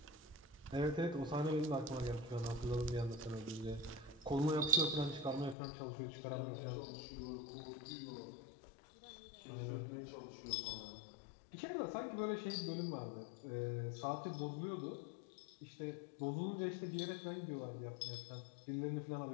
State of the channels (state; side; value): drops out; right; at 5.6 s